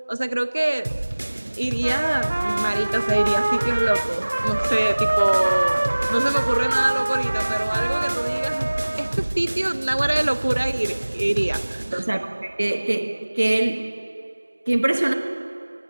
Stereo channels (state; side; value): inverted; both; correlation -1.00